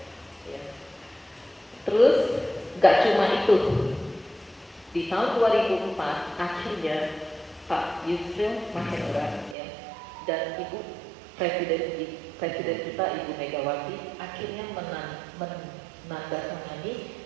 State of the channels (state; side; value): drops out; left; at 9.6 s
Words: Ya. Terus, nggak cuma itu. Di tahun 2004 akhirnya Pak Yusril Mahendra ya, dan Ibu Presiden kita Ibu Megawati akhirnya menandatangani